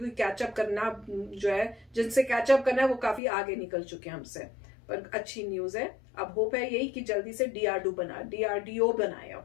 कैचअप करना जो है, जिनसे कैचअप करना है वो काफी आगे निकल चुके हैं हमसे। पर अच्छी न्यूज है, अब होप है यही कि जल्दी से डीआरडीओ बनाए अब।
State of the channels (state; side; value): drops out; right; at 3.2 s